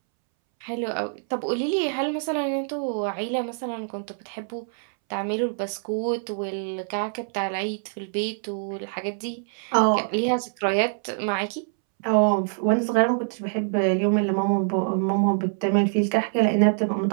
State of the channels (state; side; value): silent; left; 62 dB below the other